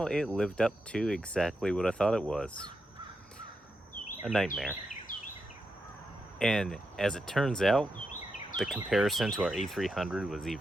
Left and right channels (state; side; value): normal; both; correlation 0.86